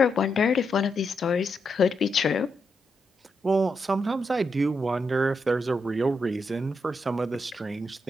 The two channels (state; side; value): normal; both; correlation 0.82